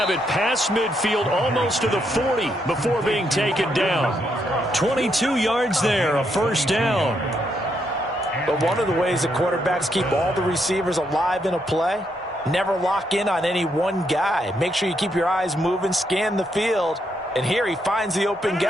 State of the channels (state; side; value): normal; both; correlation 0.77